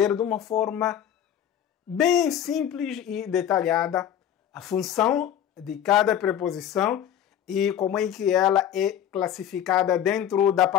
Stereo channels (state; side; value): quieter; right; 10.1 dB